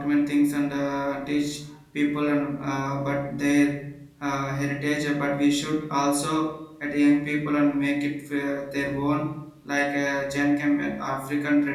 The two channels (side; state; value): both; identical; correlation 1.00